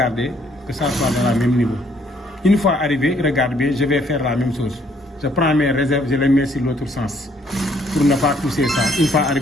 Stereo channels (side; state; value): both; normal; correlation 0.66